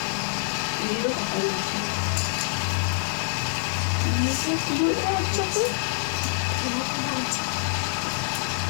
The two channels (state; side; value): silent; right; digital silence